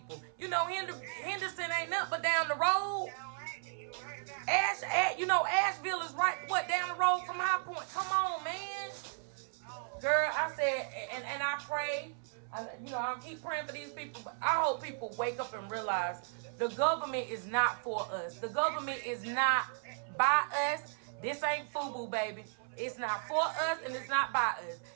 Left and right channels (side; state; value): left; silent; 54 dB below the other